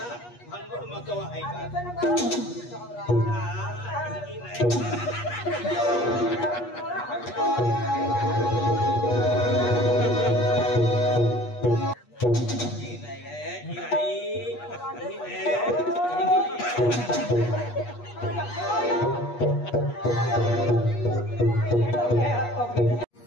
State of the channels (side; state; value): right; late; 8.3 ms